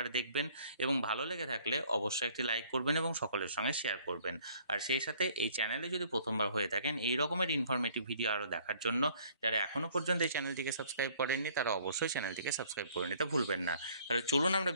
দেখবেন এবং ভালো লেগে থাকলে অবশ্যই একটি লাইক করবেন এবং সকলের সঙ্গে শেয়ার করবেন। আর সেই সাথে এই চ্যানেলে যদি প্রথমবার হয়ে থাকেন এই রকমের ইনফরমেটিভ ভিডিও আরও দেখার জন্য যারা এখনও পর্যন্ত এই চ্যানেলটিকে সাবস্ক্রাইব করেননি তারা অবশ্যই চ্যানেলটিকে সাবস্ক্রাইব করে নিতে ভুলবেন না। তাহলে চলুন আমরা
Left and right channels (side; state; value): both; inverted; correlation -0.58